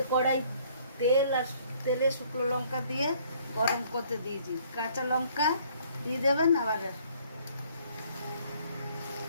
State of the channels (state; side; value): inverted; both; correlation -0.60